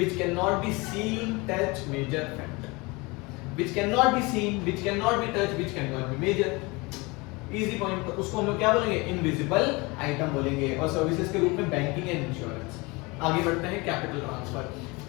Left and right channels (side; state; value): right; quieter; 25.6 dB